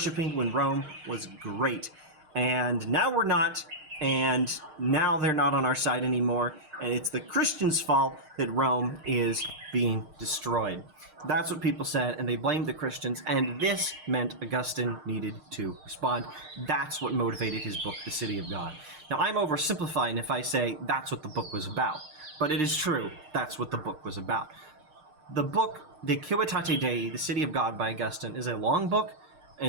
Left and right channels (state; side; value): late; left; 6.5 ms